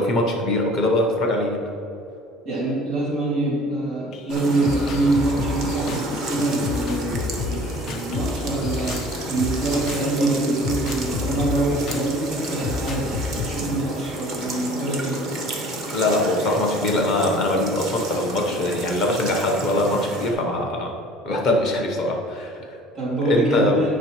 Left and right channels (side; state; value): both; normal; correlation 0.48